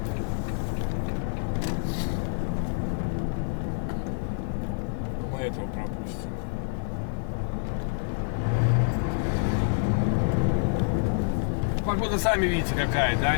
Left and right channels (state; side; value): silent; right; 59 dB below the other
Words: Мы этого пропустим. Погода, сами видите, какая, да,